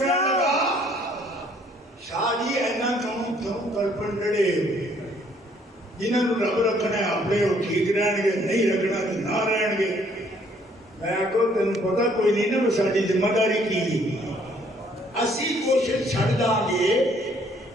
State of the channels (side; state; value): both; normal; correlation 0.63